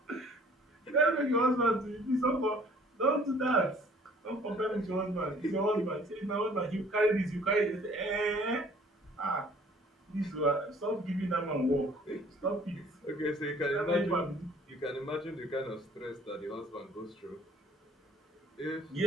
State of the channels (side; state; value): both; normal; correlation 0.55